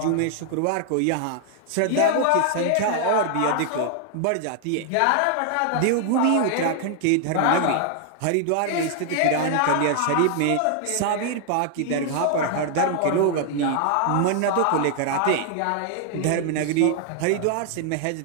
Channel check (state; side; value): different; both; correlation 0.00